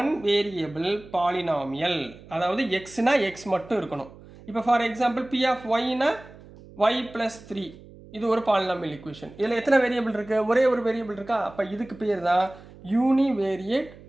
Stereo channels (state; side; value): noise; right; hum, 20 dB below the sound